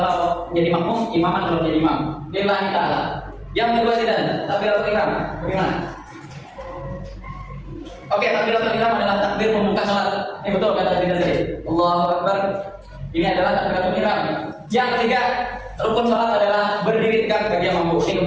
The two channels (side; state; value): both; identical; correlation 1.00